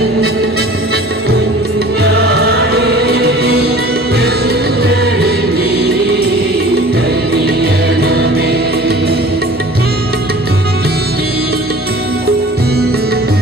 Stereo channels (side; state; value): both; normal; correlation 0.45